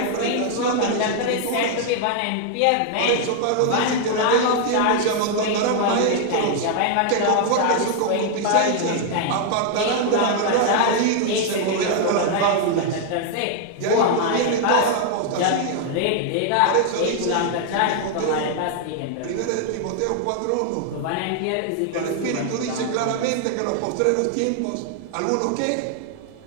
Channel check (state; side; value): different; both; correlation 0.00